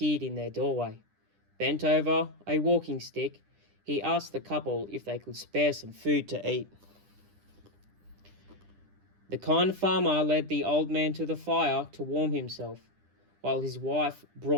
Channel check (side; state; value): left; late; 10 ms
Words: in their doorway. Bent over a walking stick, he asked the couple if they could spare some food to eat. The kind farmer led the old man to the fire to warm himself, while his wife